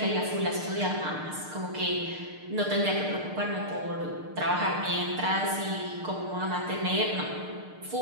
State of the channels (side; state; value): left; late; 6.6 ms